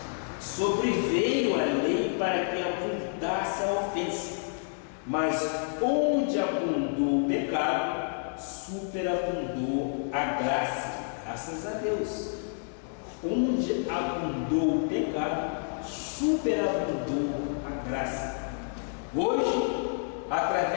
sobreveio a lei para que abundasse a ofensa, mas onde abundou o pecado, superabundou a graça. Graças a Deus. Onde abundou o pecado, superabundou a graça. Hoje,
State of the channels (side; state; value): right; silent; 58 dB below the other